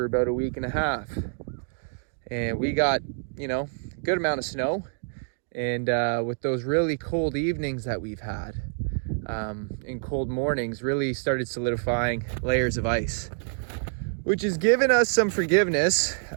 about a week and a half. And we got, a good amount of snow. And with those really cold evenings that we've had, and cold mornings, really started solidifying layers of ice, which has given us some forgiveness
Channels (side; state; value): left; silent; digital silence